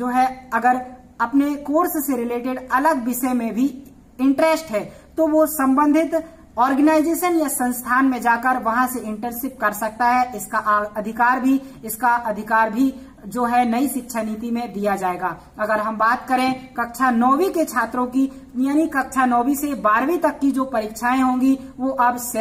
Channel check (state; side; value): identical; both; correlation 1.00